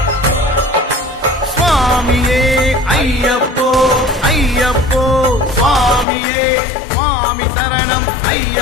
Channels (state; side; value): drops out; right; at 6.1 s